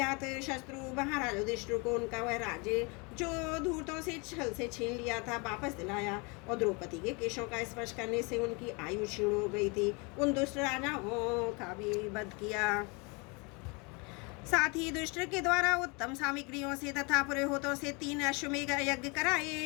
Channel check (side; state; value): right; quieter; 30.3 dB